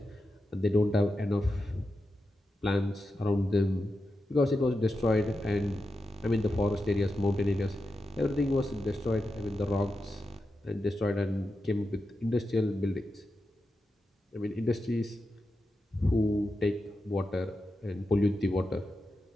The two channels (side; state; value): both; normal; correlation 0.89